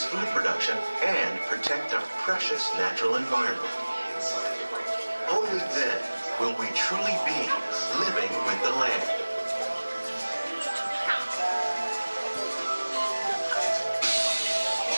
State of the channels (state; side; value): inverted; both; correlation -1.00